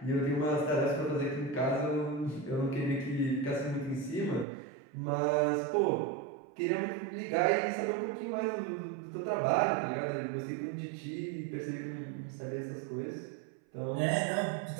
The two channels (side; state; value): left; drops out; at 4.5 s